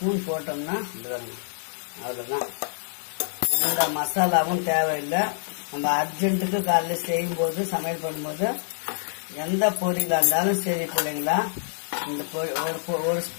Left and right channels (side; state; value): right; silent; 61 dB below the other